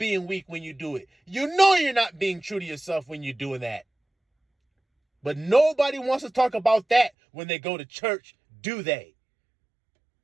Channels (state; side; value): drops out; left; at 7.1 s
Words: weak when you do it. You know you're not being true to yourself when you're doing that. But nobody wants to talk about that when they go to church, do they?